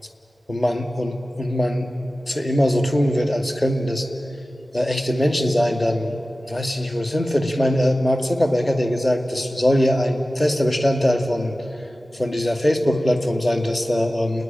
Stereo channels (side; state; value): both; normal; correlation 0.96